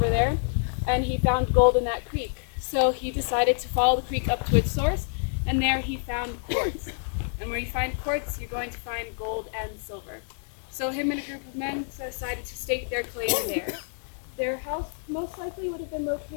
there, and he found gold in that creek. So he decided to follow the creek up to its source, and there he found quartz. And where you find quartz, you're going to find gold and silver. So him and a group of men decided to stake their claim there. Their house most likely would have been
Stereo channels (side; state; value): right; silent; 60 dB below the other